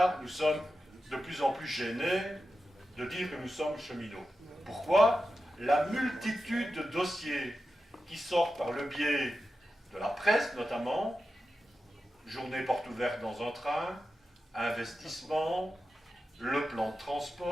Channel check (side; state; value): both; normal; correlation 0.91